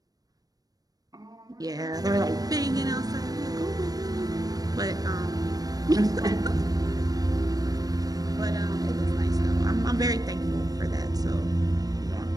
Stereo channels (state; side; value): late; left; 0.18 ms